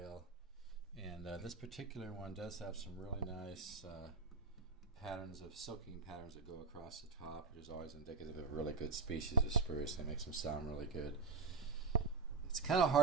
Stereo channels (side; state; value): left; quieter; 4.4 dB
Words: and this particular one does have some really nice patterns of soaking patterns that go across the top, which is always indicative of a really good species of spruce. They make them sound really good. It's kind of